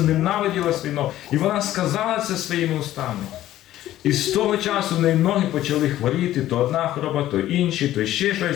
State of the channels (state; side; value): quieter; right; 13.7 dB